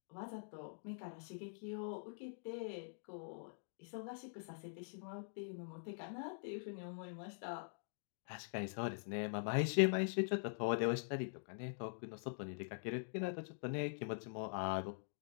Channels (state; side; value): silent; right; digital silence